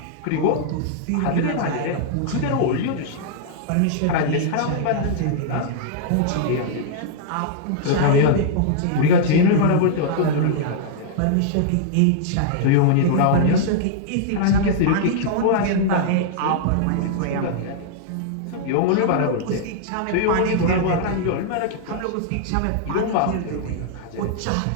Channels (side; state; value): both; different; correlation -0.01